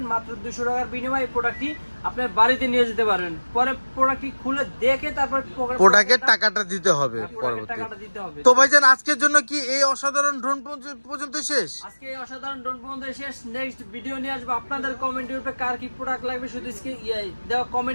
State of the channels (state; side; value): inverted; both; correlation -1.00